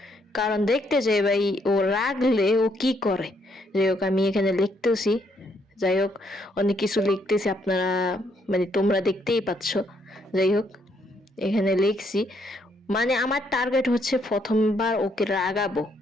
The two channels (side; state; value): both; normal; correlation 0.72